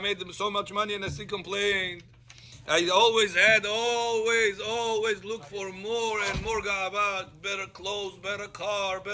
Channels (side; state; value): both; identical; correlation 1.00